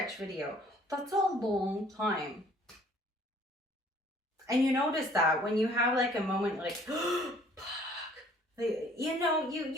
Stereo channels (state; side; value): normal; both; correlation 0.56